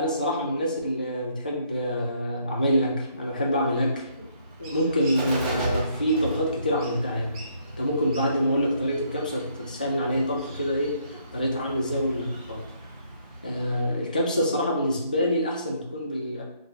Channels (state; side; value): inverted; both; correlation -0.68